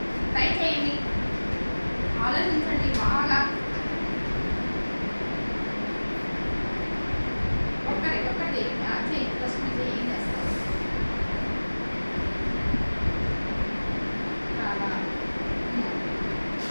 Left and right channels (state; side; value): inverted; both; correlation -1.00